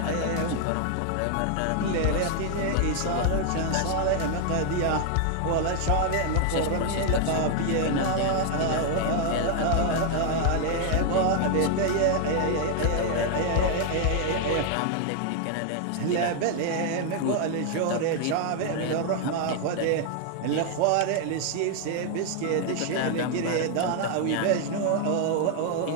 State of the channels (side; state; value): both; different; correlation 0.00